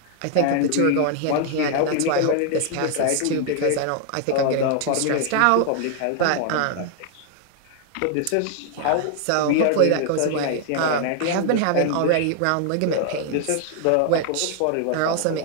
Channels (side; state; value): both; different; correlation 0.00